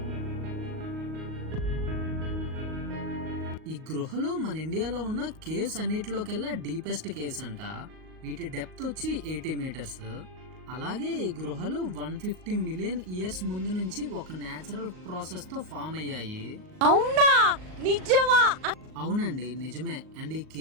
ఈ గృహలో మన ఇండియాలో ఉన్న కేవ్స్ అన్నిటిలోకెల్లా డీపెస్ట్ కేవ్స్ అంట. వీటి డెప్త్ వచ్చి 80 మీటర్స్. అలాగే ఈ గృహలు 150 మిలియన్ ఇయర్స్ ముందు నుంచి ఒక నేచురల్ ప్రాసెస్ తో ఫామ్ అయ్యాయి. అవునా? నిజమా? అవునండి, నిజమే. అండ్ ఈ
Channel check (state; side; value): late; left; 38 ms